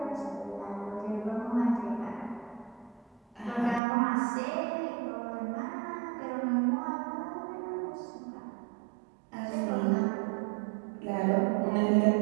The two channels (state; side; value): drops out; left; at 3.8 s